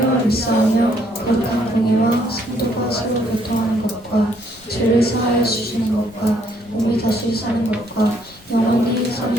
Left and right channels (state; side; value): noise; left; rumble, 27 dB below the sound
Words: 믿사오며 거룩한 공의와 성도가 서로 교통하는 것과 죄를 사하여 주시는 것과 몸이 다시 사는 것과 영원히